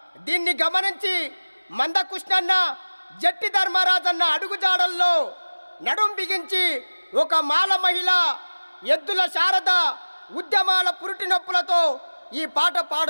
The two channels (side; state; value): both; inverted; correlation -1.00